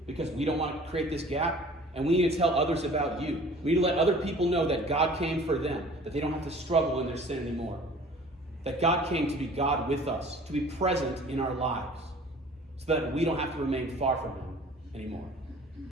because we don't want to create this gap. And we need to tell others about you. We need to let other people know that God came for them, that they don't have to struggle in their sin anymore. That God came to be God with us, to be present in our lives, so that we don't have to remain far from him anymore.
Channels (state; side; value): normal; both; correlation 0.48